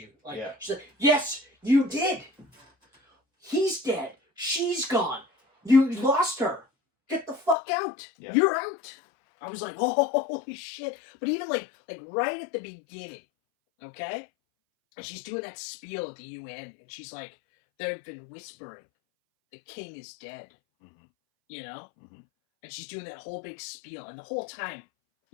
Like she's like, yes, you did. He's dead. She's gone. You lost her. Get the fuck out. Yeah. You're out. I was like, oh, holy shit. But even like right at the beginning, okay? And she's doing that spiel at the UN, and she's like, they've been whispering, the king is dead. Mm-hmm. You know? Mm-hmm. And she's doing that whole big spiel, and the whole time,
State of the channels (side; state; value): right; drops out; at 7.6 s